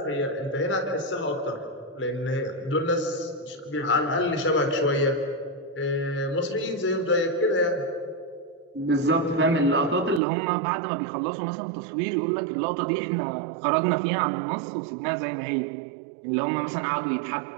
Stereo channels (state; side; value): drops out; left; at 10.2 s